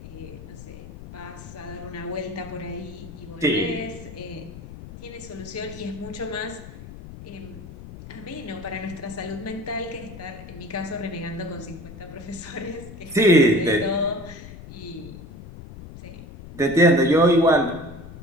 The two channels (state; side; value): noise; left; rumble, 14 dB below the sound